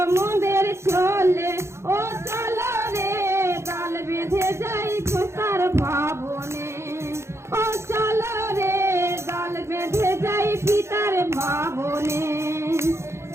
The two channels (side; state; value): left; late; 0.13 ms